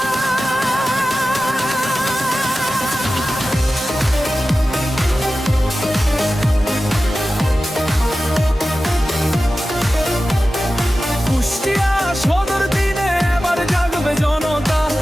কুষ্টিয়া সদর দিনে এবার জাগবে জনতা,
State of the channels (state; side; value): normal; both; correlation 0.94